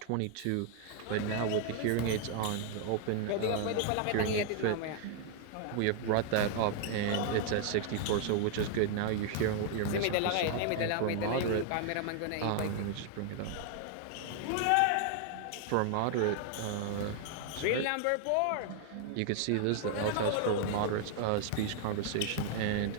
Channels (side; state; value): both; different; correlation 0.00